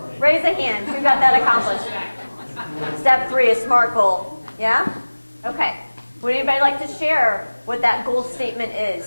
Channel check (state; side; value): inverted; both; correlation -1.00